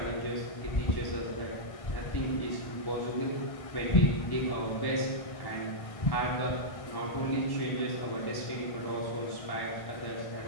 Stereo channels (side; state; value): right; late; 1.5 ms